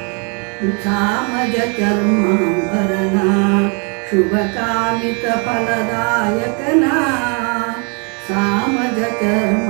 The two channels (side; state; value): left; quieter; 36.3 dB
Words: ಸಾಮಜ ಚರ್ಮಾಂಬರನ ಶುಭ ಕಾಮಿತ ಫಲದಾಯಕನ ಸಾಮಜ